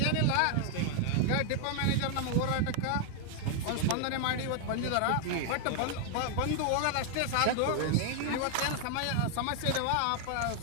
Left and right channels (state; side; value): different; both; correlation 0.00